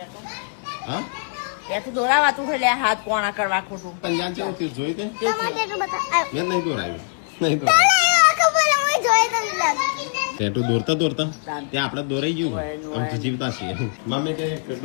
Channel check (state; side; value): silent; right; digital silence